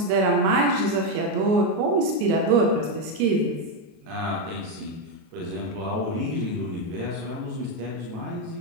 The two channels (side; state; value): left; late; 38 ms